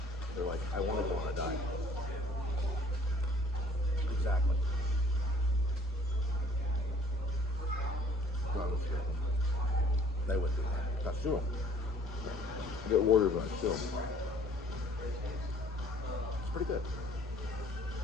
They're like, I want to go on a diet. Exactly. They would do that. That's true. Get ordered, but still. It's pretty good.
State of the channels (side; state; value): both; normal; correlation 0.56